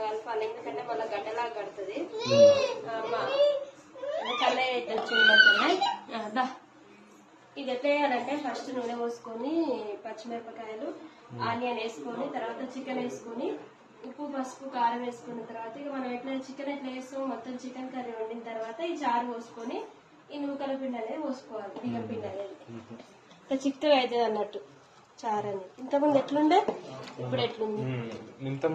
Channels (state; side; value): identical; both; correlation 1.00